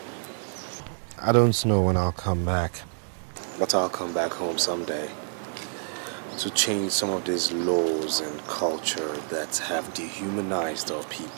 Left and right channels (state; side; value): silent; left; digital silence